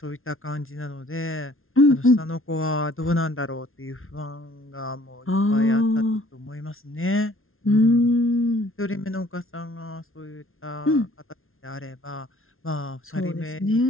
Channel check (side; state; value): right; late; 0.61 ms